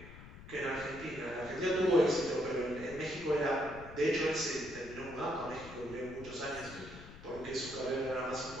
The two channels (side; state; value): left; noise; rumble, 15 dB below the sound